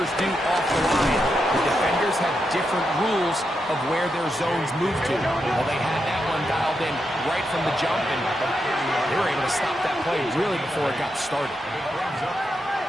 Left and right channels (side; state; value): both; normal; correlation 0.85